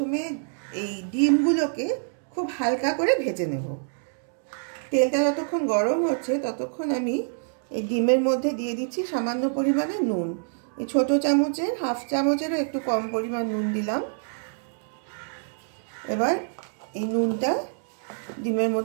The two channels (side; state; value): left; silent; digital silence